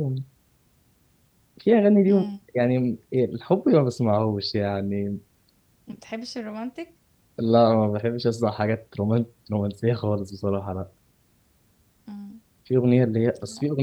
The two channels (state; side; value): identical; both; correlation 1.00